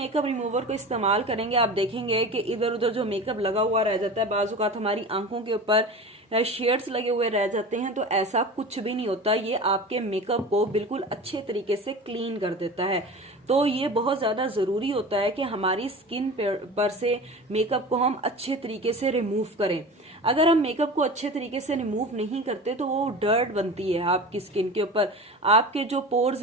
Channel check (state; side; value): normal; both; correlation 0.33